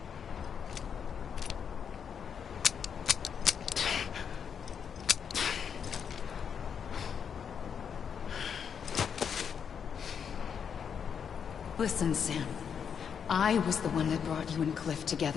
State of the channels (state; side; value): quieter; right; 7.3 dB